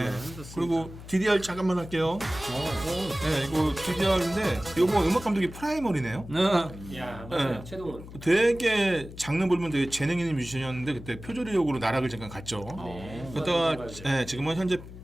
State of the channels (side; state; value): left; noise; hum, 14 dB below the sound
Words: 그리고 DDR 잠깐만 할게요. 네, 이거 DDR인데 이거 음악 감독이 프라이머리네요. 야 맞아요. 네. 최동원 되게 장르 보면 되게 재능 있는 뮤지션이었는데 그때 표절의혹으로 나락을 잠깐 갔죠. 그러다가 지금은 현재